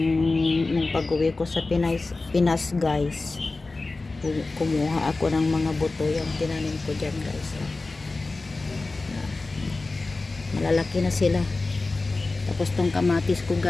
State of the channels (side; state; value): right; quieter; 3.5 dB